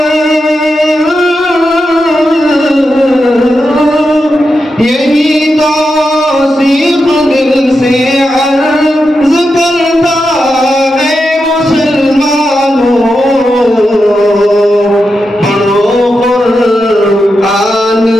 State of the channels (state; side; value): normal; both; correlation 0.88